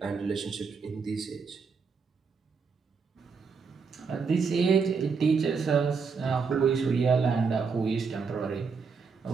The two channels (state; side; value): quieter; left; 5.3 dB